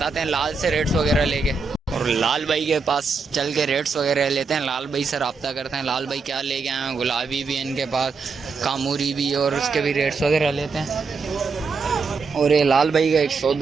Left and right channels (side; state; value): left; quieter; 4.7 dB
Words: हैं। लाल से रेट्स वगैरह लेके, और लाल भाई के पास चल के रेट्स वगैरह लेते हैं। लाल भाई से रब्ता करते हैं। लाल भाई क्या लेके आए हैं? गुलाबी भी इनके पास, कामूरी भी, और उसके भी रेट्स वगैरह लेते हैं। और ये लाल भाई का एक